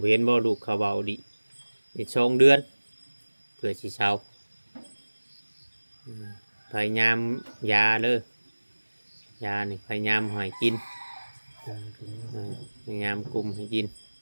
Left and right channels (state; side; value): inverted; both; correlation -1.00